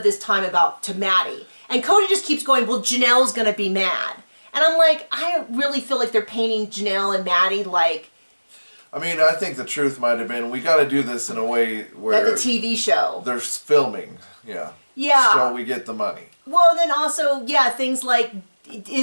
this time to Maddie. And Kody just keeps going, well, Janelle's going to be mad. And I'm like, I really feel like they're painting Janelle and Maddie like... I mean, I think the truth might have been, we got to do this in a way where... Like a TV show. They're filming, yeah. Yeah. So we get the money. Well, and then also, yeah, things like...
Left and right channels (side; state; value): both; inverted; correlation -1.00